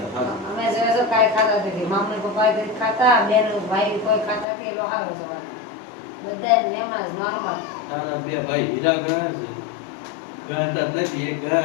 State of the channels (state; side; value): drops out; right; at 4.5 s